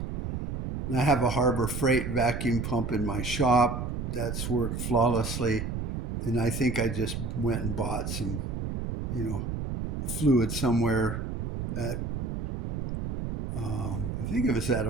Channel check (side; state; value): right; noise; rumble, 3 dB below the sound